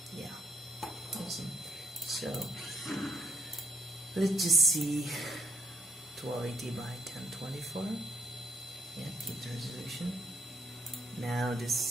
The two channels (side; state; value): both; normal; correlation 0.73